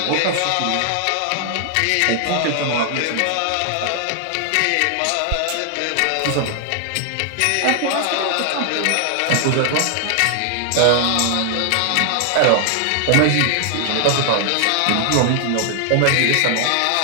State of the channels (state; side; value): different; both; correlation 0.00